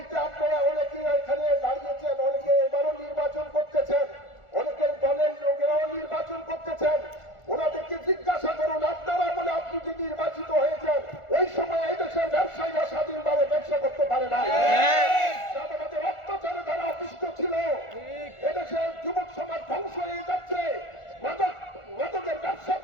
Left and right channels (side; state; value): right; late; 1.4 ms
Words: আপনারা অনেকে এখানে দাঁড়িয়েছেন, অনেকে এবারও নির্বাচন করতেছেন, অনেকের দলের লোকেরাও নির্বাচন করতেছেন। ওনাদেরকে জিজ্ঞাসা করুন, আপনারা বলে আপনি যে নির্বাচিত হয়েছেন, ওই সময় এই দেশের ব্যবসায়ীরা স্বাধীনভাবে ব্যবসা করতে পারে না। তাদের অত্যাচারে তারা অতিষ্ঠ ছিল। এদেশের যুবক সমাজ ধ্বংস হয়ে যাচ্ছে। মাদকের ব্যবসা